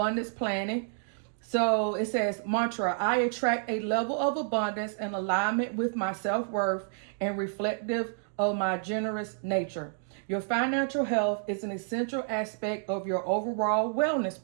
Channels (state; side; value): silent; left; digital silence